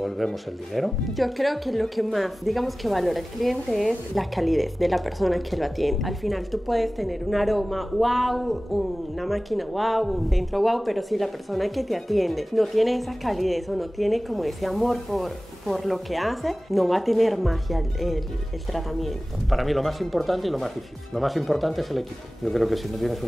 el dinero. Yo creo que lo que más, digamos, que valora el cliente es la calidez de la persona que lo atiende. Al final tú puedes tener un aroma wow, una máquina wow, un centro wow, pero si la persona que te atiende no tiene esa calidez o no tiene como ese amor por lo que hace, no va a tener magia el tratamiento. Para mí lo más importante y lo más difícil. Lo más importante es el equipo. Yo creo que si no tienes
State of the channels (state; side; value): normal; both; correlation 0.97